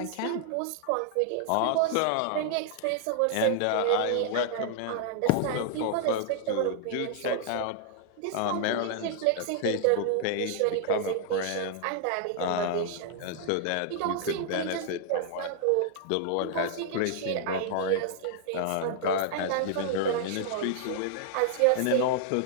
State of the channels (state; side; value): different; both; correlation -0.01